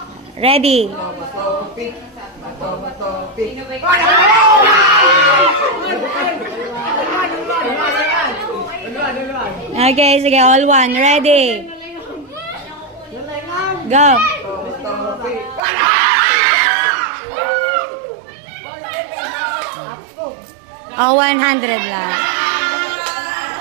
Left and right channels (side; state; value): left; drops out; at 15.6 s